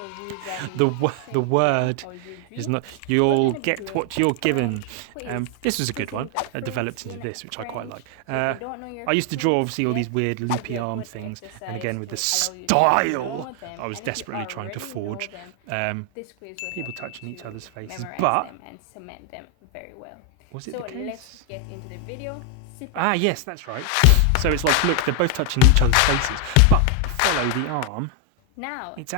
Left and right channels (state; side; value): different; both; correlation 0.01